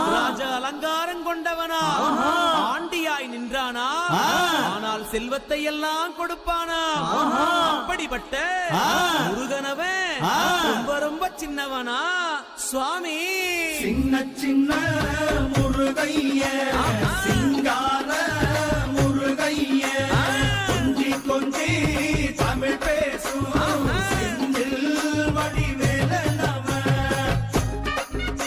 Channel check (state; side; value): identical; both; correlation 1.00